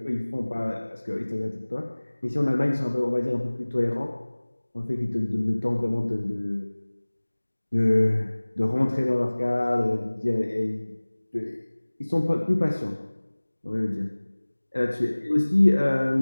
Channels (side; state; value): both; inverted; correlation -1.00